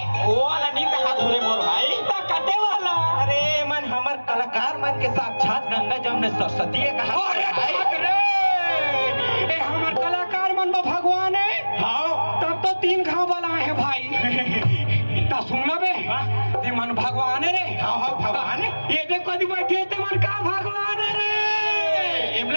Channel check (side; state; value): both; inverted; correlation -1.00